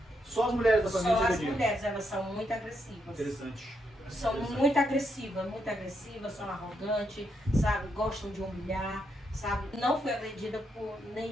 Só as mulheres da família? Só as mulheres, elas são muito agressivas. Interessante. São muito agressivas, são arrogantes, sabe? Gostam de humilhar, sabe? Não fui agredida por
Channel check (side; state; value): both; normal; correlation 0.79